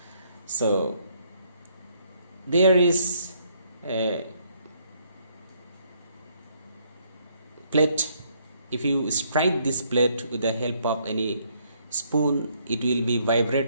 So there is a plate. If you strike this plate with the help of any spoon, it will be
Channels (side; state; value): both; inverted; correlation -0.68